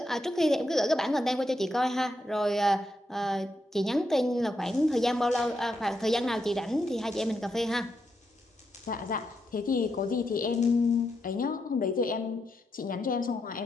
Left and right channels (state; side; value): normal; both; correlation 0.83